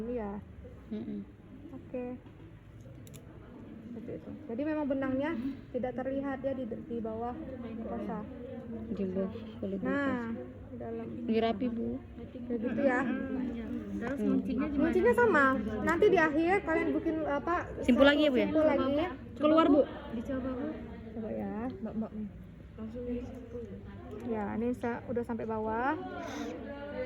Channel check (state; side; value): identical; both; correlation 1.00